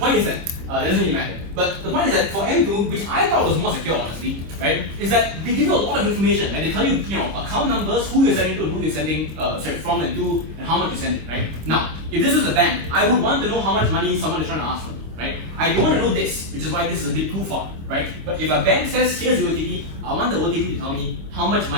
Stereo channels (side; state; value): left; late; 26 ms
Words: is that that doesn't really matter. But the point is that for M2, which I thought was more secure, honestly, right, is that they give you a lot of information, and they tell you, account numbers, who you're sending to, who you're sending, from and to, and how much you're sending, right? Now, if this was a bank, I would want to know how much money someone is trying to ask from me, right? I don't want to know this, which is why this is a bit too far, right? But if a bank says, here's the OTP, I want the OTP to tell me how much